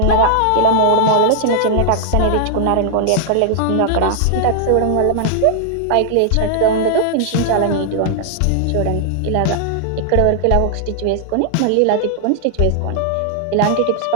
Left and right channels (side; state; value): both; different; correlation -0.01